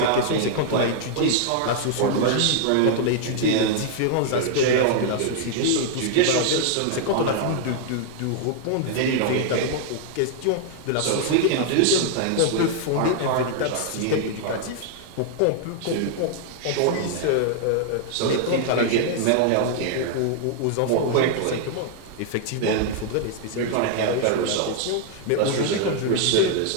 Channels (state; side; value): different; both; correlation 0.00